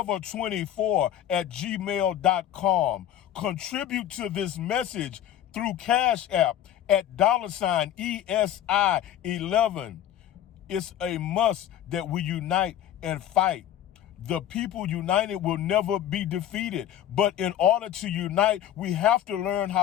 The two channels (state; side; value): quieter; right; 11.1 dB